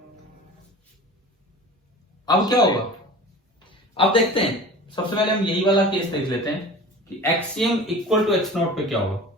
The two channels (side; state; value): both; normal; correlation 0.38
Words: अब क्या होगा? अब देखते हैं, सबसे पहले हम यही वाला केस देख लेते हैं कि xcm इक्वल टू x0 पे क्या होगा।